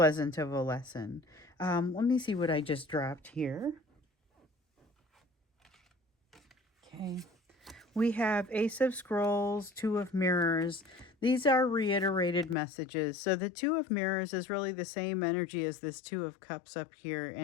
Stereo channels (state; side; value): drops out; right; at 12.6 s